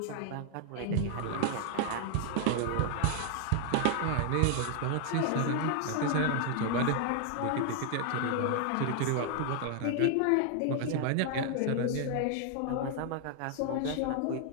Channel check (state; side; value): different; both; correlation 0.00